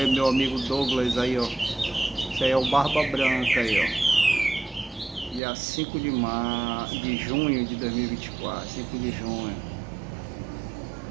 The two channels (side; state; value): left; drops out; at 5.4 s